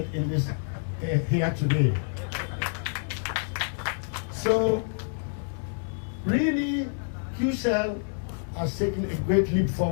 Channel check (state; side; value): silent; right; digital silence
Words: in this here today. So, really, QCell has taken a great leap